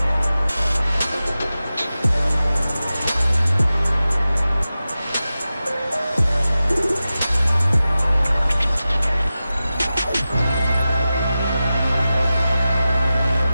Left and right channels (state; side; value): inverted; both; correlation -0.94